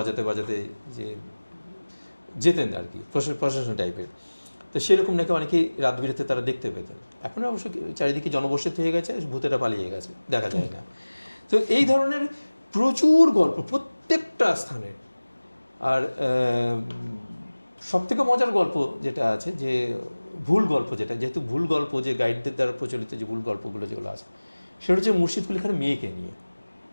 বাজাতে যে যেতেন আর কি, প্রশাসন টাইপের। তো সেরকম নাকি অনেকেই রাত বিরেতে তারা দেখতে পেতেন। এখন অবশ্য চারিদিকে জনবসতি হয়ে গেছে, ভূতেরা পালিয়ে গেছে, দেখা যায় না। তো এই ধরনের প্রচুর গল্প প্রত্যেকটা স্থানে। আর সবথেকে মজার গল্প যেটা আছে, যে ভুল গল্প, যেটা যেহেতু ভুল গল্প, যে গাইডদের দ্বারা প্রচলিত যে ভুল গল্পগুলো যেগুলো আছে, সেটা হচ্ছে মুর্শিদ কুলি খানের মেয়েকে নিয়ে।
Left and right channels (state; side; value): inverted; both; correlation -1.00